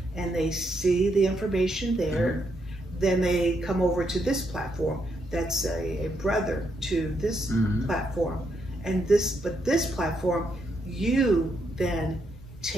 and they see the information there. Then they come over to this platform that's a brother to this platform. And this platform, you then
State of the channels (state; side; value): normal; both; correlation 0.78